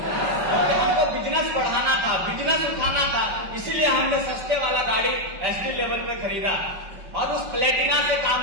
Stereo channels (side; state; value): left; late; 5.4 ms